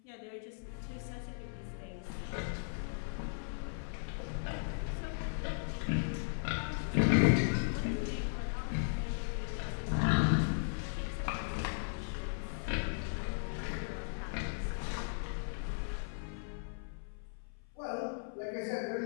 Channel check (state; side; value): silent; right; 53 dB below the other